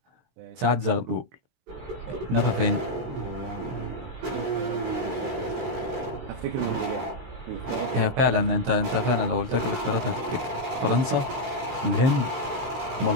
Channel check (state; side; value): late; left; 23 ms